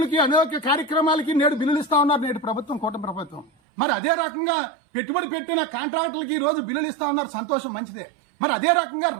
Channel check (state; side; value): drops out; left; at 3.5 s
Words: అనేక కార్యక్రమాలకి నేడు బిల్లులు ఇస్తా ఉన్నారు నేడు ప్రభుత్వం, కూటమి ప్రభుత్వం. మరి అదే రకంగా పెట్టుబడి పెట్టిన కాంట్రాక్టులకి ఈ రోజు బిల్లులు ఇస్తా ఉన్నారు, సంతోషం, మంచిదే. మరి అదే రకంగా